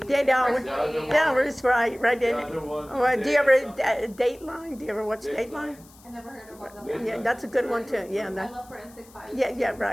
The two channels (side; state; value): left; noise; hiss, 25 dB below the sound